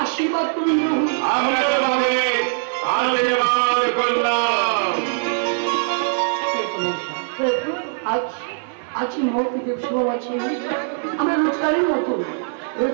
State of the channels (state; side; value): silent; left; 55 dB below the other